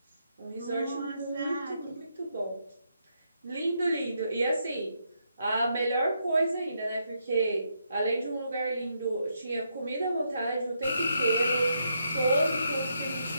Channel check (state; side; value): inverted; both; correlation -0.78